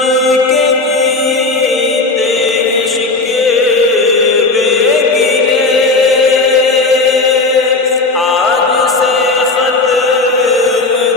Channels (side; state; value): right; quieter; 3.5 dB